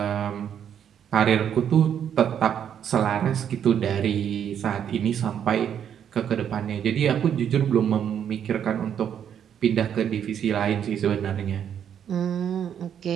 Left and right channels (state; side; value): quieter; left; 8.9 dB